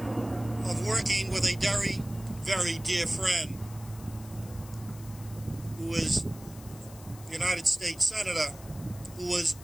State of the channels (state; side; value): noise; left; hiss, 19 dB below the sound